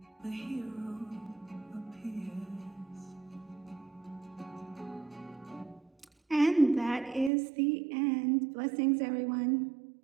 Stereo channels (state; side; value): drops out; left; at 7.3 s